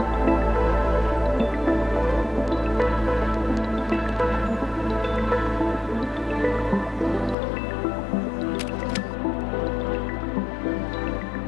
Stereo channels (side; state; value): right; drops out; at 7.4 s